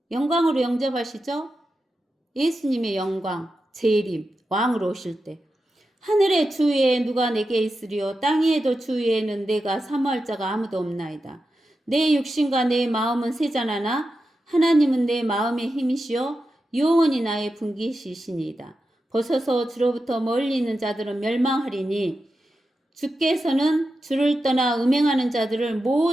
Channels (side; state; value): both; normal; correlation 0.90